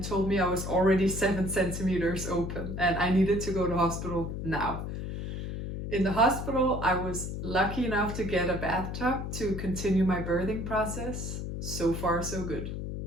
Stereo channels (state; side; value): noise; left; hum, 5 dB below the sound